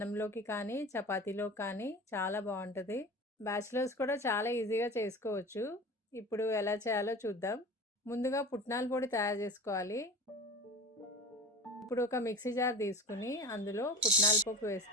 కానీ చపాతీలోకి కానీ చాలా బాగుంటుంది. బ్యాచిలర్స్ కూడా చాలా ఈజీగా చేసుకోవచ్చు. ఇప్పుడు ఎలా చేయాలో చూద్దాం. ముందుగా పుట్నాల పొడి తయారు చేసుకోవాలి. ఇప్పుడు ఒక మిక్సీ జార్ తీసుకుని అందులో పుట్నాల పప్పు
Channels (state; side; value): normal; both; correlation 0.33